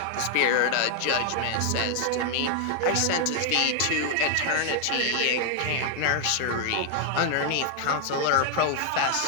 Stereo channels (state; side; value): different; both; correlation 0.00